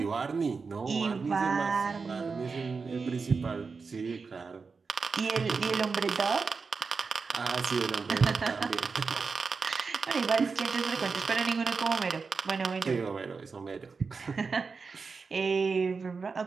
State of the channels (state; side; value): quieter; left; 4.8 dB